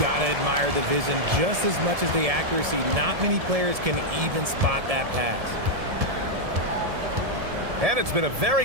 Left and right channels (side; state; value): left; late; 1.7 ms